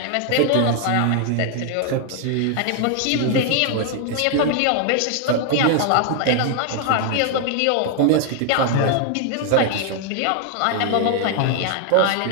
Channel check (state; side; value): different; both; correlation 0.00